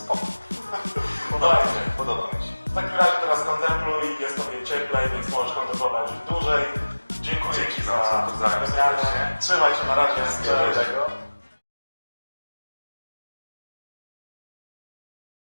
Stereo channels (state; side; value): inverted; both; correlation -1.00